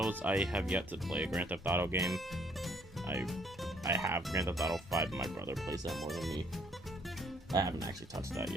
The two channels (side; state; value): both; normal; correlation 0.65